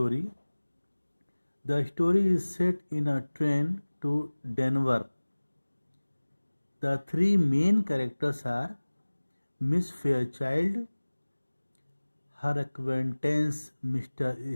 The story is set in a train to Denver. The three main characters are Miss Fairchild, her acquaintance Mr.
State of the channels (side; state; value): both; inverted; correlation -1.00